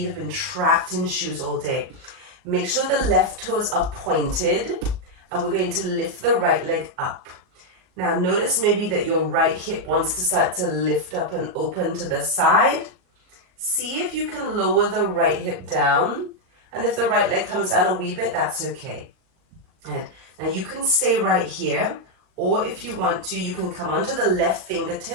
have been trapped in shoes all day. Make sure the left toes are pointed, and we're going to lift the right leg up. Now notice maybe that your right hip wants to start to lift up and open to the side. See if you can lower the right hip down, and if the right leg comes down a wee bit, that's okay. And now you can stay right here, or if you want to, you can come onto the left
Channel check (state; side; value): late; left; 38 ms